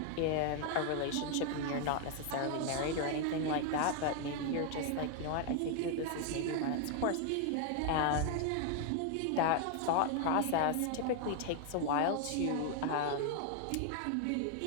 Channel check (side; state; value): both; different; correlation 0.00